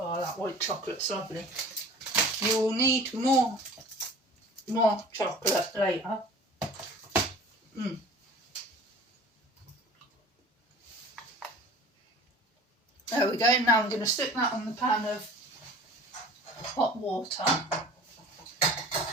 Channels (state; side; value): normal; both; correlation 0.44